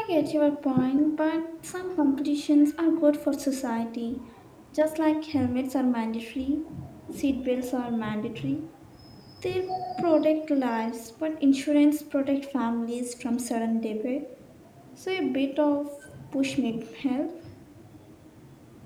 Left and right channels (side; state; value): both; identical; correlation 1.00